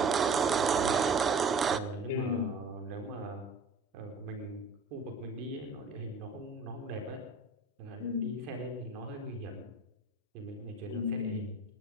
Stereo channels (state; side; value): quieter; left; 3.2 dB